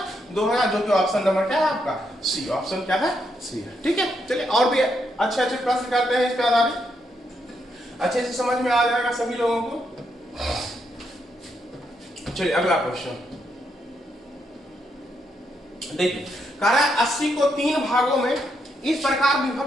2000, जो कि ऑप्शन नंबर क्या है आपका? सी। ऑप्शन क्या है? सी है, ठीक है। चलिए और भी अच्छे अच्छे प्रश्न करते हैं, इस पे आधारित अच्छे से समझ में आ जाएगा सभी लोगों को। चलिए अगला क्वेश्चन देखिए। कह रहा है 80 को 3 भागों में इस प्रकार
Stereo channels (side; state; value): both; normal; correlation 0.79